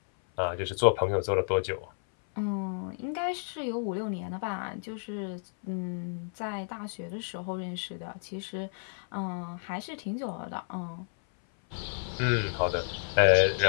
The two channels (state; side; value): silent; right; 57 dB below the other